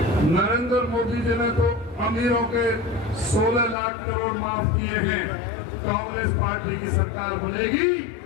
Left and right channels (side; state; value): right; drops out; at 3.8 s